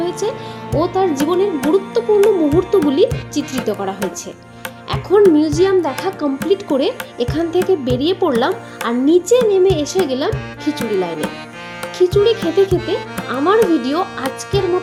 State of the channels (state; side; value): identical; both; correlation 1.00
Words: ও তার জীবনের গুরুত্বপূর্ণ মুহূর্তগুলি চিত্রিত করা হয়েছে। এখন মিউজিয়াম দেখা কমপ্লিট করে এখান থেকে বেরিয়ে পড়লাম আর নিচে নেমে এসে গেলাম খিচুড়ি লাইনে। খিচুড়ি খেতে খেতে আমার ভিডিও আজকের